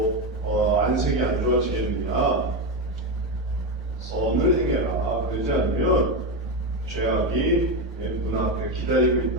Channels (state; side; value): normal; both; correlation 0.12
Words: 안색이 안 좋아지겠느냐. 선을 행해라. 그러지 않으면 죄악이 눈앞에 기다리고